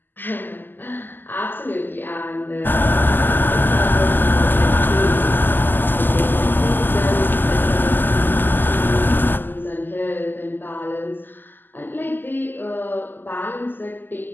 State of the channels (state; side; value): late; right; 0.090 ms